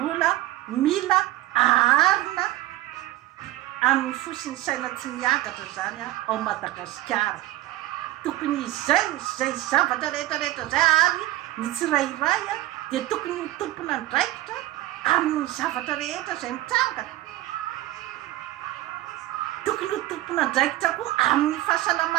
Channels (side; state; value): left; quieter; 15.9 dB